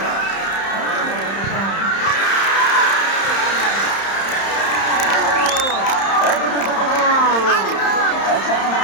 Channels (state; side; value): late; right; 31 ms